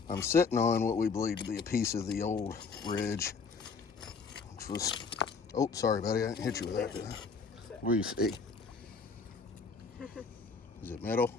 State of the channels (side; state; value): right; quieter; 5.0 dB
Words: I'm sitting on what we believe to be a piece of the old ridge, which was, oh, sorry, buddy, I didn't hit you with that, did I? What do you see? Is it metal?